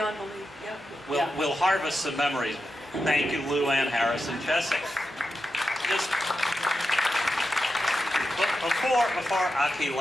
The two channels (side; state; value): both; normal; correlation 0.89